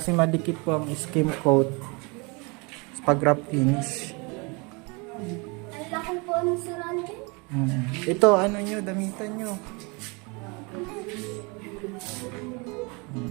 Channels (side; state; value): left; quieter; 29.5 dB